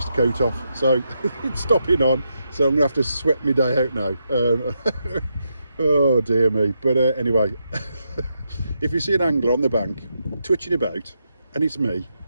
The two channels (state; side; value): inverted; both; correlation -0.83